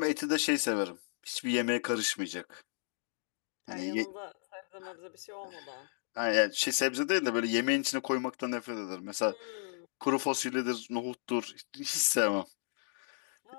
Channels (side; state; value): right; silent; digital silence